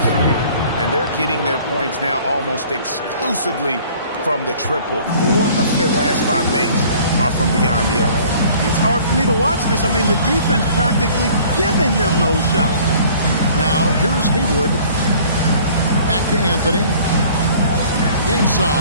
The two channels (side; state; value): both; inverted; correlation -0.52